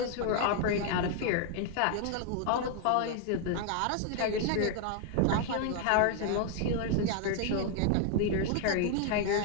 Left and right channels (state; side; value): different; both; correlation 0.00